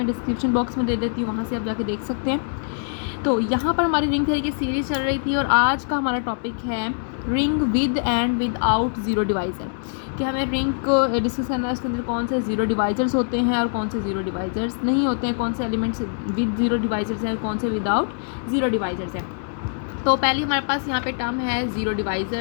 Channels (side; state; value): right; silent; digital silence